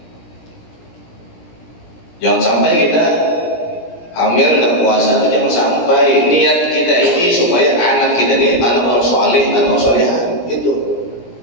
Jangan sampai kita hamil dan puasa, jangan sampai. Niat kita ini supaya anak kita ini anak orang soleh, anak orang soleh. Itu.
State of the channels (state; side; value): late; right; 17 ms